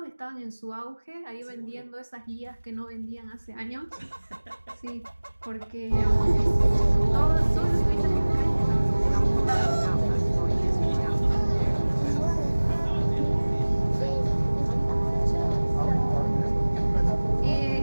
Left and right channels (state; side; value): inverted; both; correlation -1.00